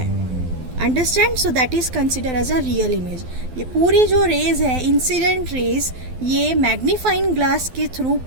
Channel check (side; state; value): left; late; 12 ms